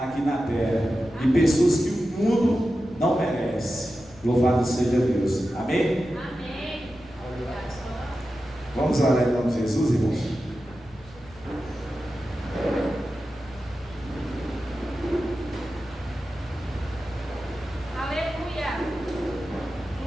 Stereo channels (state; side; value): noise; left; rumble, 22 dB below the sound